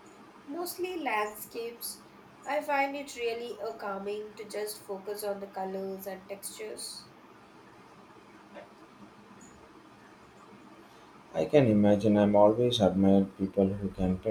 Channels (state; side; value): identical; both; correlation 1.00